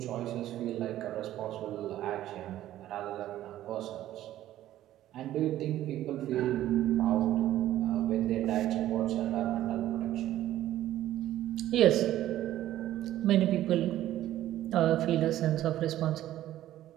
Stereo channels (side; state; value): left; quieter; 13.4 dB